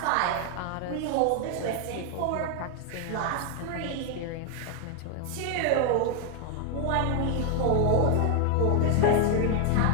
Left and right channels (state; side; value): different; both; correlation 0.00